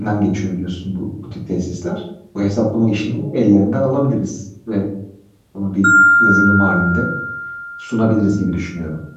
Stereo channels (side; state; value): both; identical; correlation 1.00